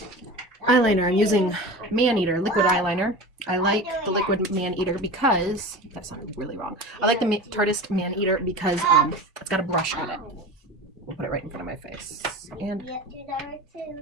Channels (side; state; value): both; normal; correlation 0.32